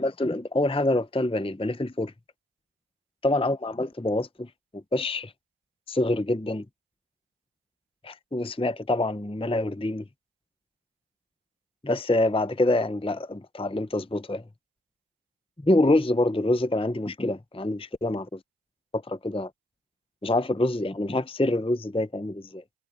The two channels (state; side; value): normal; both; correlation 0.72